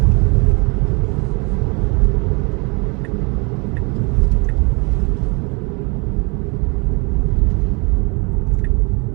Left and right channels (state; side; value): quieter; left; 31.0 dB